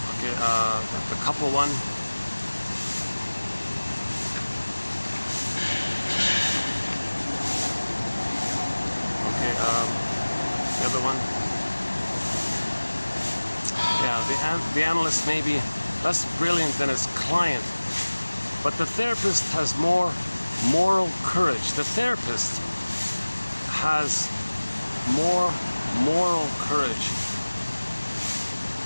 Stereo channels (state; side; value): inverted; both; correlation -1.00